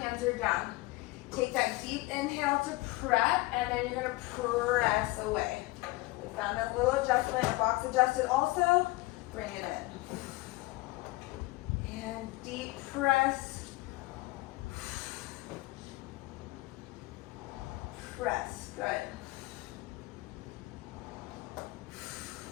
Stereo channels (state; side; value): quieter; right; 21.3 dB